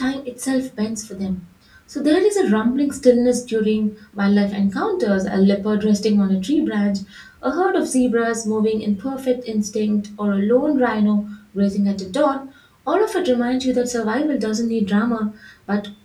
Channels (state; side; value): identical; both; correlation 1.00